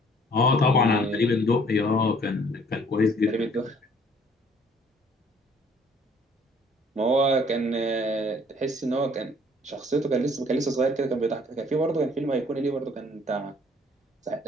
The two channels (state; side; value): normal; both; correlation 0.58